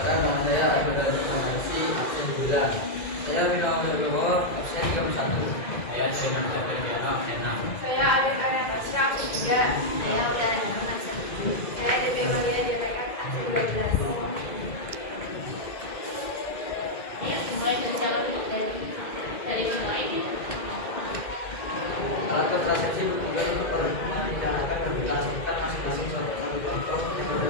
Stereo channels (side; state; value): right; late; 3.0 ms